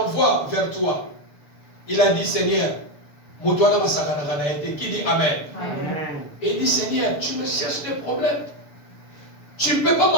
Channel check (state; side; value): late; right; 6.9 ms